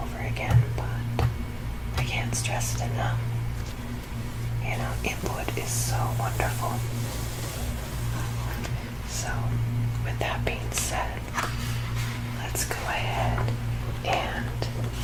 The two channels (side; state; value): both; identical; correlation 1.00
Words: again, but I can't stress it enough. Input is so wonderful. So, with that being said, let's go ahead and